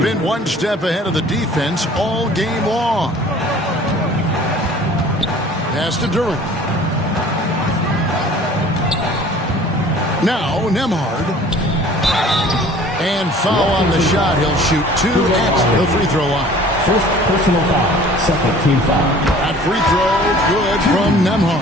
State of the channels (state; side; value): normal; both; correlation 0.49